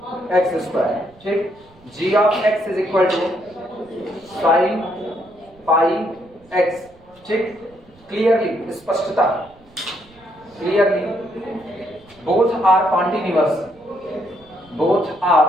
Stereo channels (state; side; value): noise; right; rumble, 28 dB below the sound